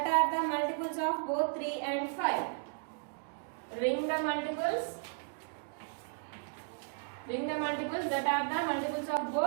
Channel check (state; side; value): silent; left; digital silence